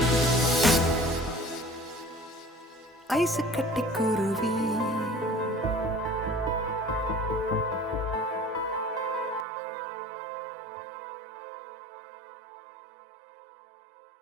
ஐசு கட்டி குருவி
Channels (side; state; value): left; drops out; at 9.5 s